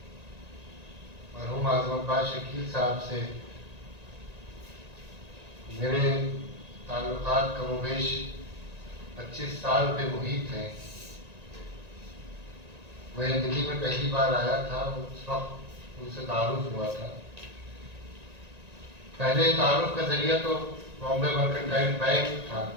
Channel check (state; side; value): late; left; 1.9 ms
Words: مرحوم اعظم عباس شکیل صاحب سے میرے تعلقات کم و بیش 25 سال پہ محیط ہیں۔ میں دلی میں پہلی بار آیا تھا، اس وقت ان سے تعارف ہوا تھا۔ پہلے تعارف کا ذریعہ تو بامبے مرکنٹائل بینک تھا،